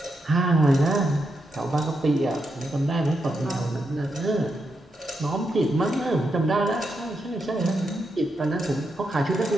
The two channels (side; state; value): both; normal; correlation 0.83